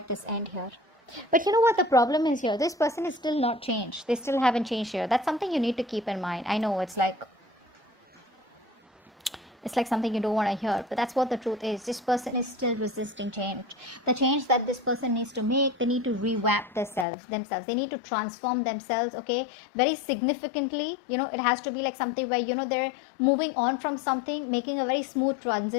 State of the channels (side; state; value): right; drops out; at 17.1 s